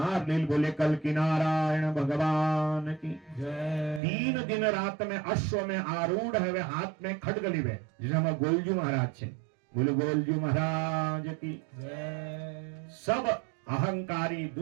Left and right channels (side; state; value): left; drops out; at 4.0 s